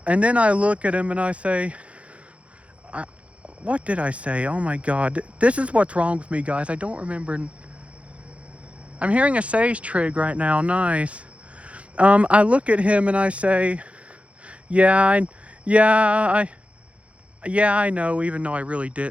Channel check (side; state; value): left; late; 0.063 ms